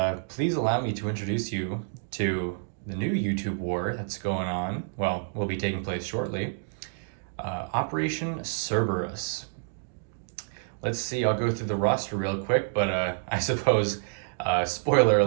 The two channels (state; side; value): silent; left; digital silence